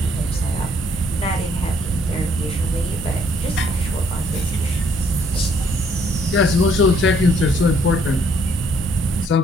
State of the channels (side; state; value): both; normal; correlation 0.66